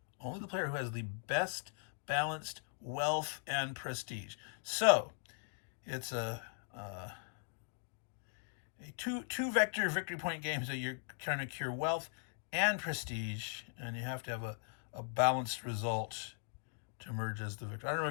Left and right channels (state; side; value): silent; right; 51 dB below the other